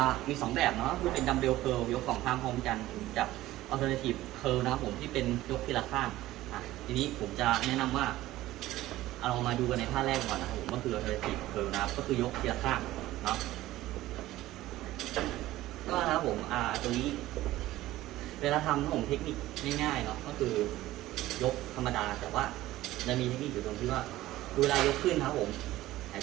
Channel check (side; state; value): left; quieter; 16.0 dB